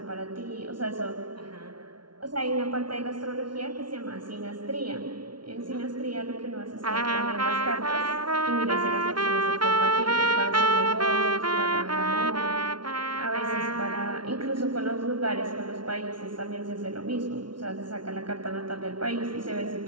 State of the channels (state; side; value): late; left; 0.72 ms